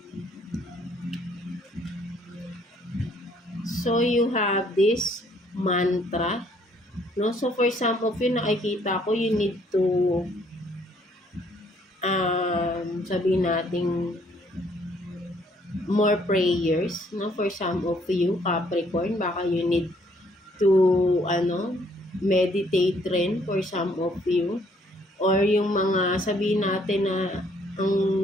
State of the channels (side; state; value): both; normal; correlation 0.65